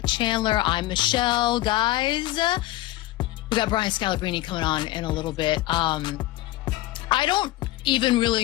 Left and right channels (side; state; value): right; quieter; 17.0 dB